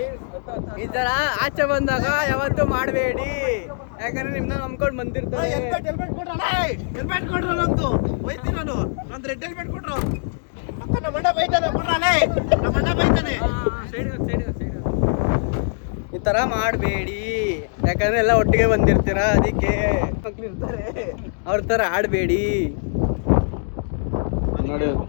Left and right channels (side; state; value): right; silent; digital silence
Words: ಈ ತರ ಆಚೆ ಬಂದಾಗ ಯಾವತ್ತೂ ಮಾಡಬೇಡಿ, ಯಾಕಂದ್ರೆ ನಿಮ್ನ ನಂಬ್ಕೊಂಡು ಬಂದಿರ್ತಾರೆ. ಈ ತರ ಮಾಡಬೇಡಿ, ಯಾಕಂದ್ರೆ ಎಲ್ಲ ಒಟ್ಟಿಗೆ ಬಂದಿರ್ತೀರಾ, ಅದಕ್ಕೆ ಮಕ್ಳು ಇರ್ತಾರೆ, ಅವ್ರ ತರ ಆಡಬೇಡಿ. ನೋಡಿ